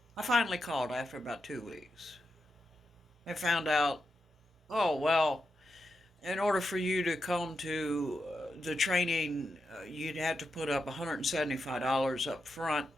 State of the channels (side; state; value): both; normal; correlation 0.87